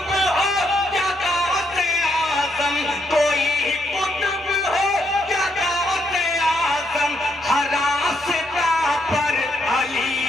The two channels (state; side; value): normal; both; correlation 0.75